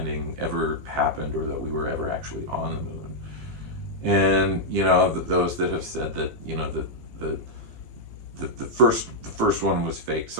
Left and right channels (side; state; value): left; late; 16 ms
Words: ever happened or that we were ever actually on the moon. And those that have said that the the first one was fake.